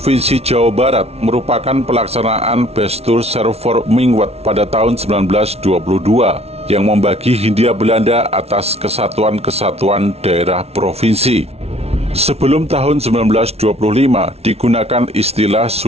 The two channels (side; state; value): left; late; 0.30 ms